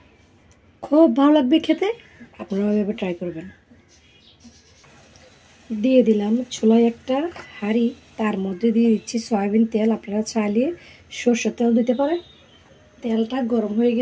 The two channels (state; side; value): identical; both; correlation 1.00